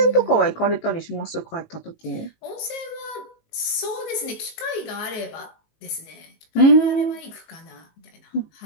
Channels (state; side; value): late; right; 19 ms